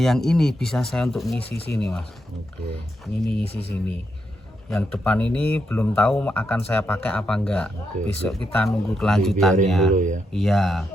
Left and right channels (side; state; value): both; normal; correlation 0.82